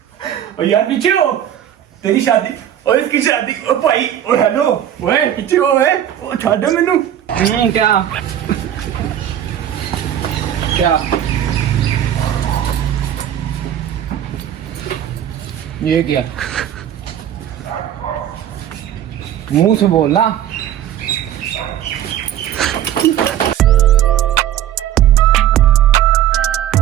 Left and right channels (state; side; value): quieter; left; 10.8 dB